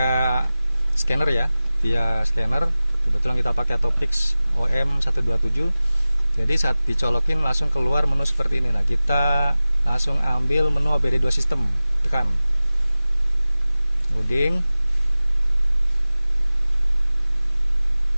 scanner ya. Via scanner. Kebetulan kita pakai Topix OM127. Jadi saat dicolokin langsung keluar menu seperti ini. Nah, kita langsung ambil menu OBD2 sistem, tekan loading.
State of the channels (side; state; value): both; inverted; correlation -0.97